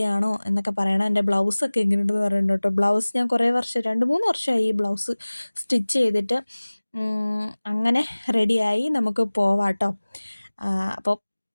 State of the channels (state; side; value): inverted; both; correlation -1.00